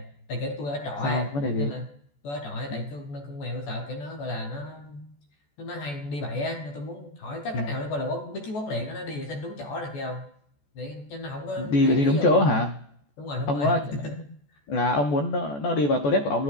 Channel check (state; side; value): late; right; 14 ms